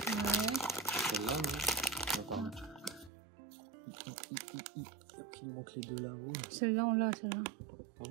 Ouais. Celle-là, non? Non, pardon. Il nous manque les deux là. Oui. Celle-là, on l'a, celle-là. Hein?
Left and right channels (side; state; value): left; drops out; at 3.1 s